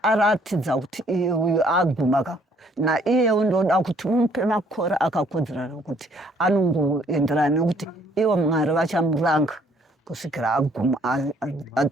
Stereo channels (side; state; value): both; normal; correlation 0.63